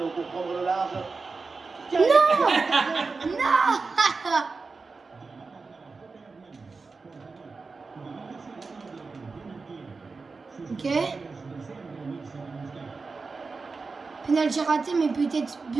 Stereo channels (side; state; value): left; quieter; 4.3 dB